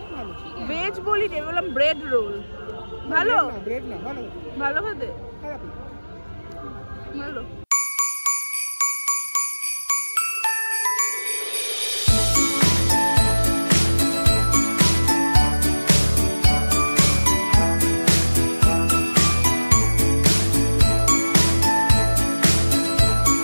ভালো ভেজ বলি নি বললাম ব্রেড রোল ভালো ব্রেড না ভালো ভালো খেতে খারাপ না ভালো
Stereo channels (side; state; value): both; inverted; correlation -1.00